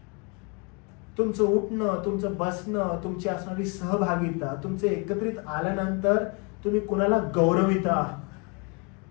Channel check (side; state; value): right; quieter; 32.4 dB